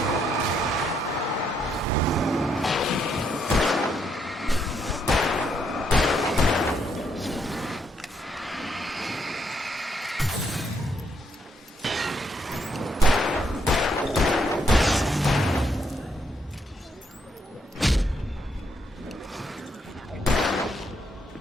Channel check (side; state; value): both; normal; correlation 0.75